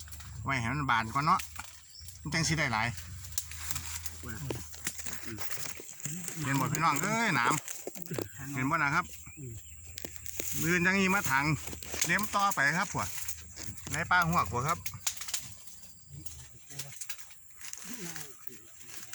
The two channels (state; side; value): identical; both; correlation 1.00